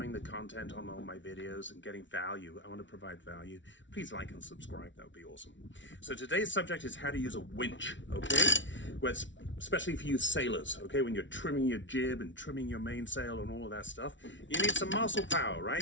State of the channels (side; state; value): right; late; 0.55 ms